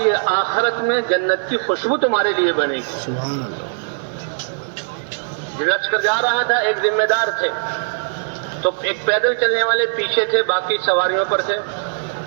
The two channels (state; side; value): silent; left; 63 dB below the other